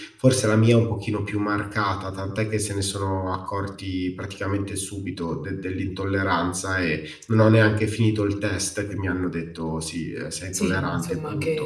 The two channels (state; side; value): identical; both; correlation 1.00